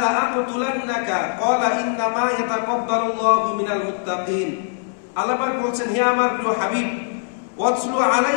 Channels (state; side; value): silent; right; 64 dB below the other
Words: লা আকতুলান্নাকা ক্বালা ইন্নামা ইয়াতাকাব্বালুল্লাহু মিনাল মুত্তাকিন। আল্লাহ পাক বলছেন, হে আমার প্রিয় হাবিব, ওয়াতলু